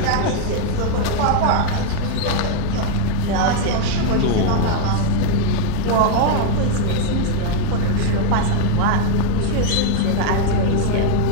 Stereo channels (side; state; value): both; different; correlation 0.01